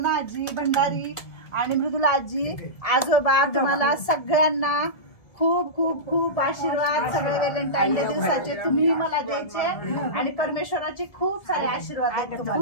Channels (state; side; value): late; right; 1.7 ms